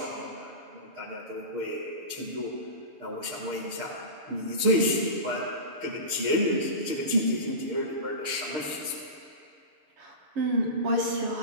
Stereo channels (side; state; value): left; late; 6.5 ms